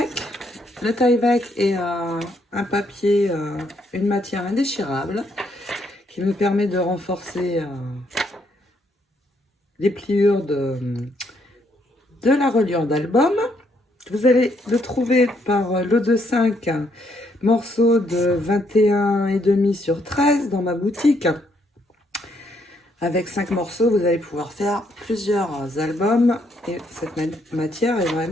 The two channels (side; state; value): both; normal; correlation 0.73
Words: Le Tyvek est un papier, une matière indéchirable qui me permet de renforcer les pliures de la reliure d'album. Vous allez le trouver par lot de 5 morceaux de 21,5 sur 13 dans ma boutique. Avec 5 morceaux, vous allez pouvoir faire plusieurs albums et cette matière est